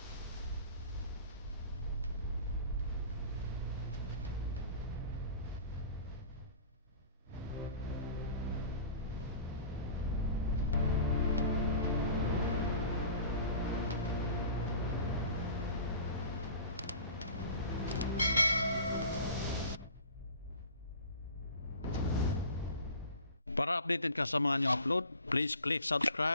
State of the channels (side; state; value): both; inverted; correlation -0.42